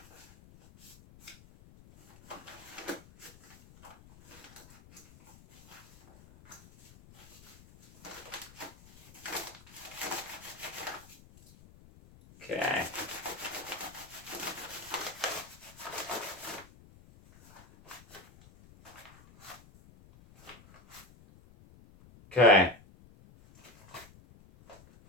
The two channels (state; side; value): noise; left; rumble, 22 dB below the sound